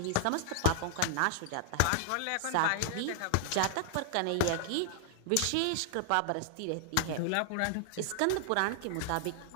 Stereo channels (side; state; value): both; different; correlation -0.01